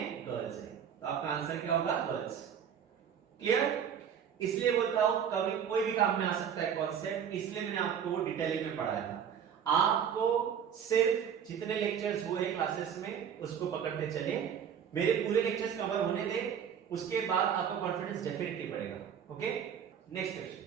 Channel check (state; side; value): quieter; left; 8.1 dB